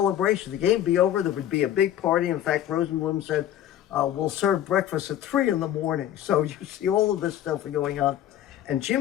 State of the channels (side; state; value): right; quieter; 11.4 dB